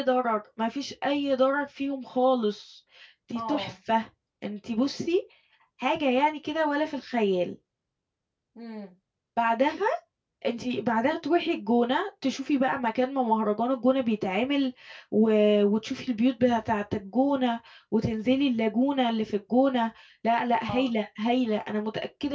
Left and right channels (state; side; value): identical; both; correlation 1.00